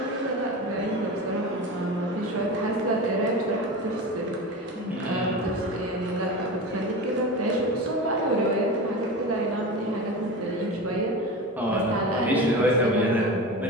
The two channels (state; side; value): normal; both; correlation 0.27